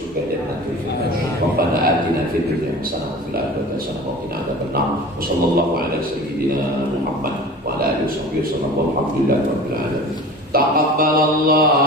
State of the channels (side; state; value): both; normal; correlation 0.37